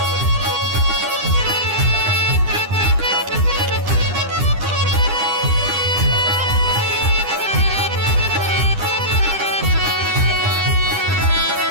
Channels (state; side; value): late; left; 9.9 ms